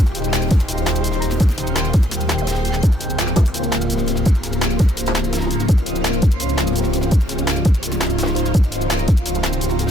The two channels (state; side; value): normal; both; correlation 0.69